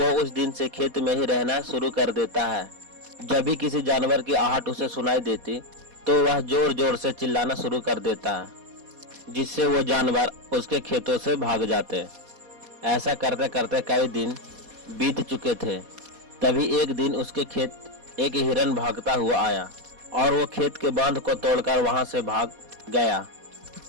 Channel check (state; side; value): late; left; 4.2 ms